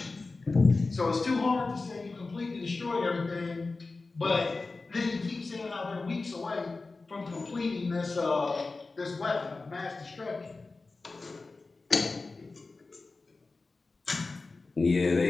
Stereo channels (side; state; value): right; quieter; 3.7 dB